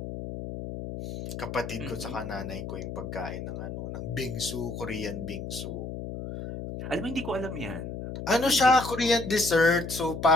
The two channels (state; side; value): noise; left; hum, 7 dB below the sound